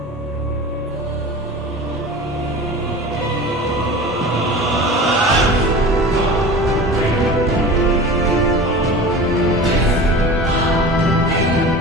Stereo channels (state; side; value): normal; both; correlation 0.35